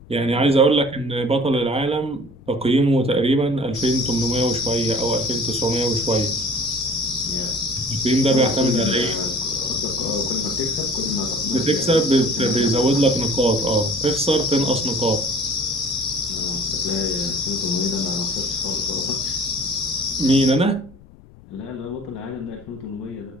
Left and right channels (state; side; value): noise; left; rumble, 23 dB below the sound